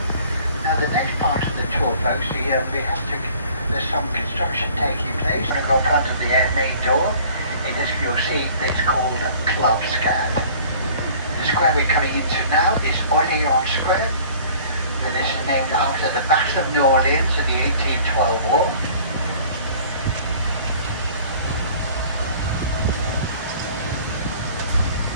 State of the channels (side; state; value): both; inverted; correlation -0.50